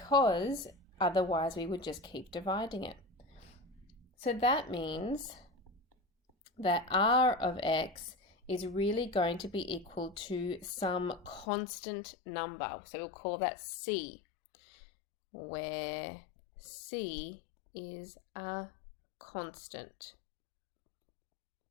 otherwise we would just keep dividing it. So that means that r of x is really going to be equal to some constant number, so we'll call that c, where c is a constant.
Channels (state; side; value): drops out; right; at 11.5 s